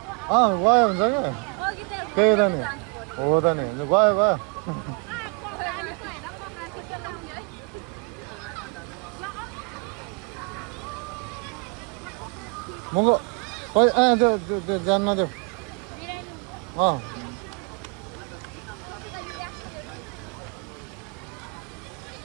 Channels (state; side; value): quieter; left; 35.0 dB